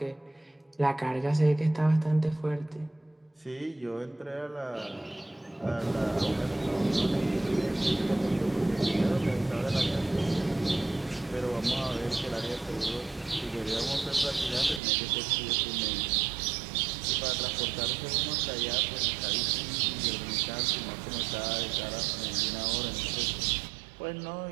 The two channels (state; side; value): drops out; left; at 14.8 s